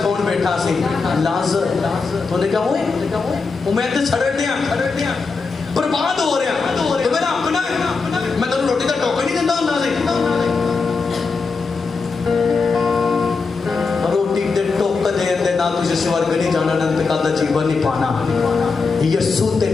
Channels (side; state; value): right; quieter; 4.5 dB